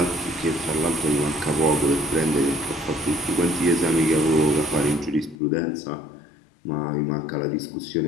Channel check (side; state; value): right; drops out; at 5.4 s